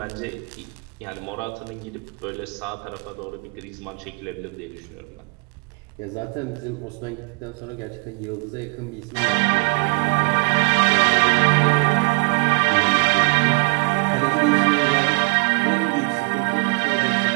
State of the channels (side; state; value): left; quieter; 32.8 dB